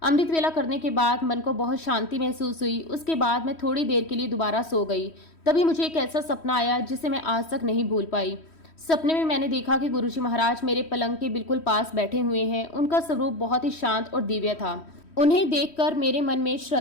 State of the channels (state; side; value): late; right; 3.1 ms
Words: अमृत वेला करने के बाद मन को बहुत शांति महसूस हुई। उसके बाद मैं थोड़ी देर के लिए दोबारा सो गई। तभी मुझे एक ऐसा सपना आया जिसे मैं आज तक नहीं भूल पाई। सपने में मैंने देखा कि गुरुजी महाराज मेरे पलंग के बिल्कुल पास बैठे हुए हैं। उनका स्वरूप बहुत ही शांत और दिव्य था। उन्हें देखकर मेरे मन में